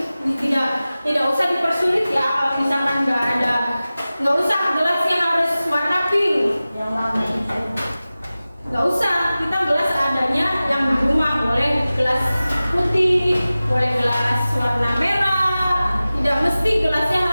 tidak usah dipersulit ya. Kalau misalkan nggak usah gelasnya harus warna pink, nggak usah, kita gelas adanya yang di rumah. Boleh gelas putih, boleh gelas warna merah, tidak mesti gelasnya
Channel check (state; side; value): inverted; both; correlation -0.96